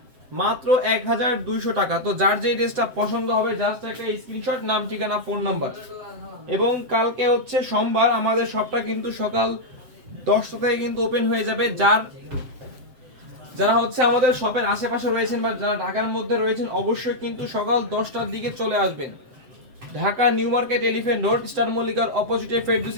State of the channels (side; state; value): left; late; 7.6 ms